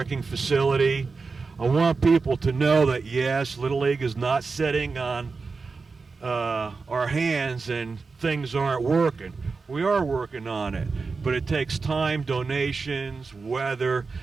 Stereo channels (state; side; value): quieter; left; 4.4 dB